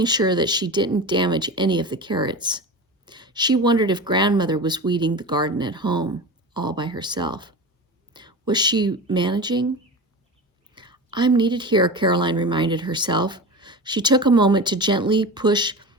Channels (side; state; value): both; normal; correlation 0.29